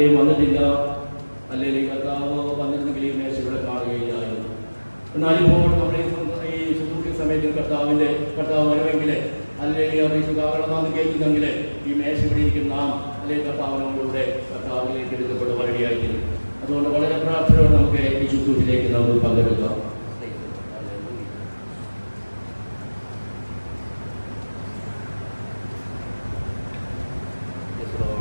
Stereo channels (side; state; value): both; inverted; correlation -1.00